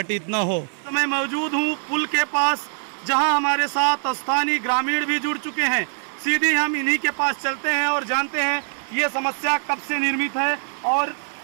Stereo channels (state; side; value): silent; left; digital silence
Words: न हो। तो मैं मौजूद हूँ पुल के पास, जहाँ हमारे साथ स्थानीय ग्रामीण भी जुड़ चुके हैं। सीधे हम इन्हीं के पास चलते हैं और जानते हैं ये समस्या कब से निर्मित है और